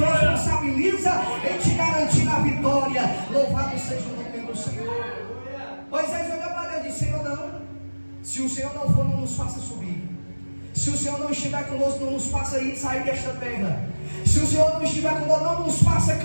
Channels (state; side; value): inverted; both; correlation -1.00